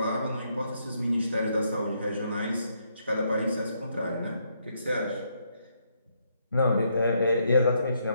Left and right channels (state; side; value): inverted; both; correlation -0.75